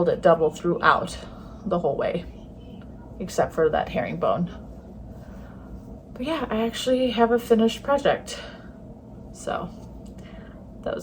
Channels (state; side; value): identical; both; correlation 1.00